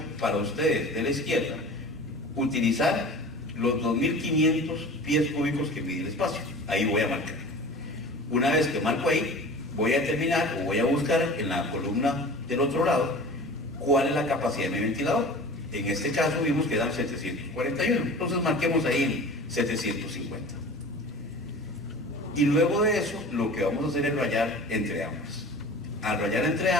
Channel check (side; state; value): both; normal; correlation 0.38